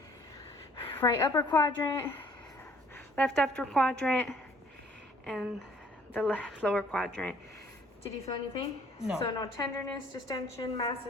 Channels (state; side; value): normal; both; correlation 0.59